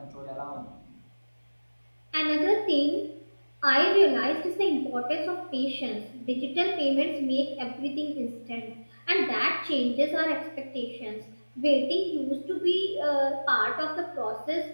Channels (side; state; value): both; inverted; correlation -1.00